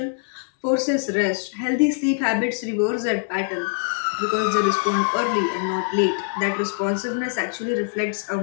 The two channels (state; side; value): silent; right; 63 dB below the other